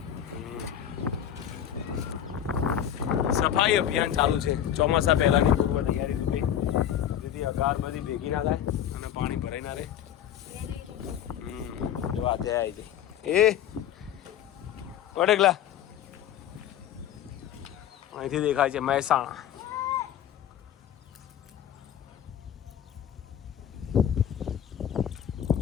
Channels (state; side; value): quieter; right; 10.2 dB